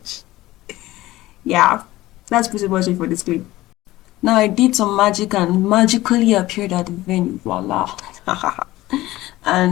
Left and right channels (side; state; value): right; quieter; 17.2 dB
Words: Yeah, that's pretty much it for this clip. Now I did some magic and magically appeared at the venue. Voila.